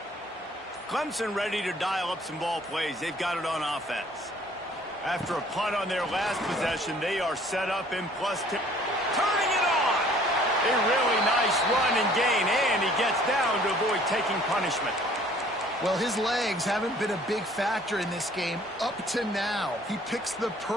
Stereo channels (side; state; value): both; normal; correlation 0.55